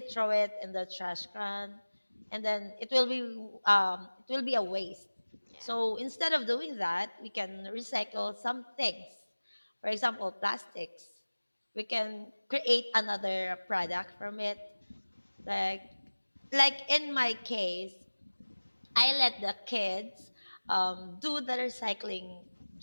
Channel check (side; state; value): both; inverted; correlation -1.00